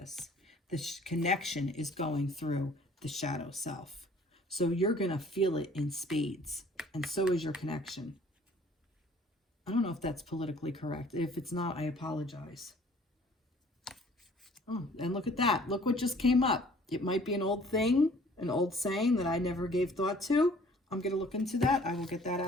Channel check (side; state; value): both; normal; correlation 0.54